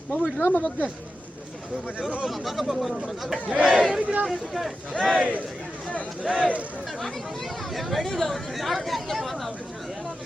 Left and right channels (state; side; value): normal; both; correlation 0.91